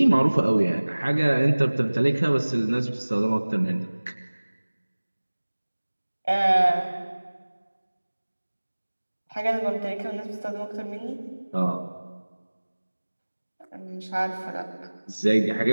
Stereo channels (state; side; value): inverted; both; correlation -1.00